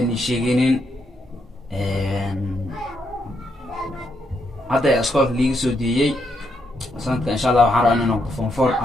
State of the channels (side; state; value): both; normal; correlation 0.78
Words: sheegaynin hadda iskoolka liiga soo diiyay sanadka insha Allah waxaan rabaa inaan noqdo form 4